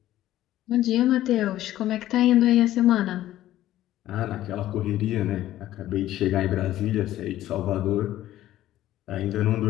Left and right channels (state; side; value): quieter; right; 13.9 dB